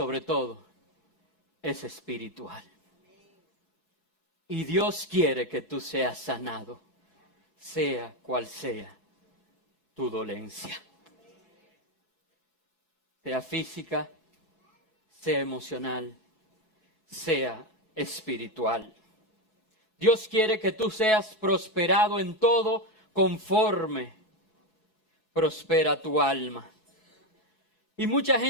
todo es espiritual. Y Dios quiere que tú seas sanado, sea cual sea tu dolencia. Sea física, sea emocional, sea espiritual. Dios quiere que tú seas prosperado en todo conforme prospera tu alma. Y mucha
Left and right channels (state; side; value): late; right; 4.7 ms